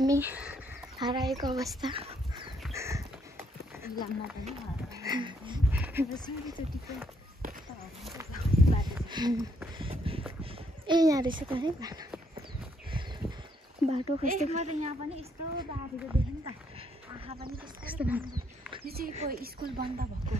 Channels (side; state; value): both; normal; correlation 0.72